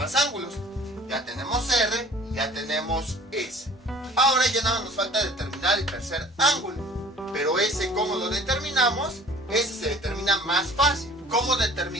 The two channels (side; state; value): both; normal; correlation 0.49